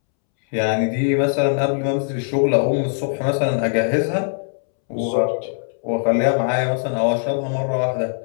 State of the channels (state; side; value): silent; right; 65 dB below the other